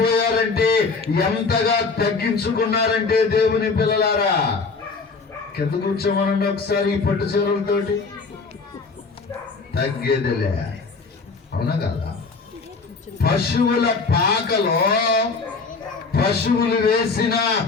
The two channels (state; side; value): quieter; right; 4.4 dB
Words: ఎంతగా తగ్గించుకున్నారంటే దేవుని పిల్లలారా, కింద కూర్చోమనండి ఒకసారి. ఈ పట్టు చీరలతోటి తగ్గేదిలే, అవునా కదా? పశువుల పాకలో పశువులు వేసిన